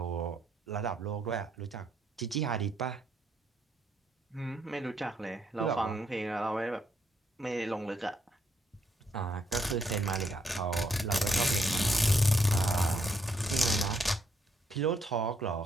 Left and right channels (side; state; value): both; normal; correlation 0.74